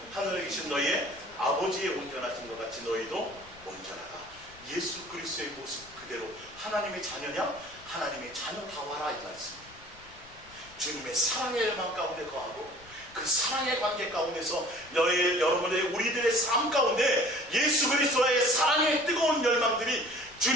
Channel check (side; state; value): left; noise; rumble, 23 dB below the sound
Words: 하늘에 계신 너희의 아버지의 온전하신 것 같이 너희도 온전하라. 예수 그리스도의 모습 그대로 하나님의 자녀냐? 하나님의 자녀다워라 이 말씀. 주님의 사랑의 열망 가운데 거하고 그 사랑의 관계 가운데서 여러분의 우리들의 삶 가운데 예수 그리스도의 사랑의 뜨거운 열망들이,